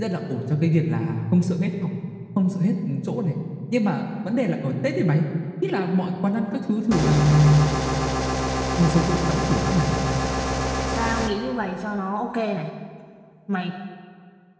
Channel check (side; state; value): both; identical; correlation 1.00